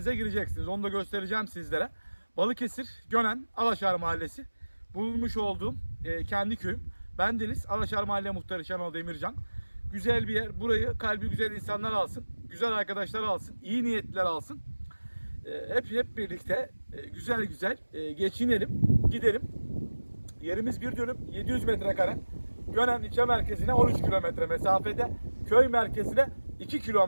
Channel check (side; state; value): both; inverted; correlation -1.00